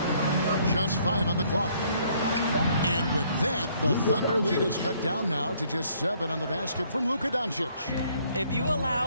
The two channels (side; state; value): both; inverted; correlation -0.65